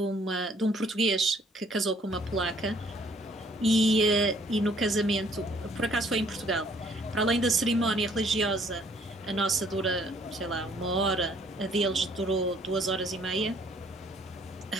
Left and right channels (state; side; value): normal; both; correlation 0.62